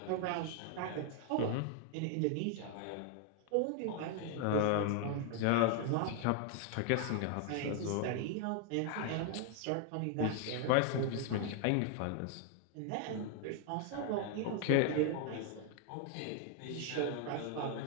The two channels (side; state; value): both; different; correlation 0.00